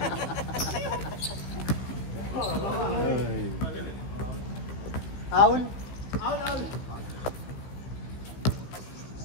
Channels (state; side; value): late; right; 15 ms